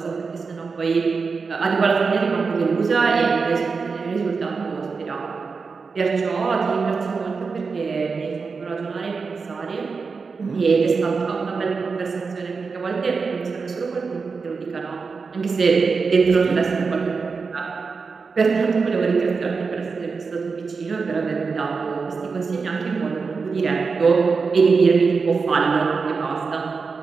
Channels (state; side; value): quieter; left; 4.8 dB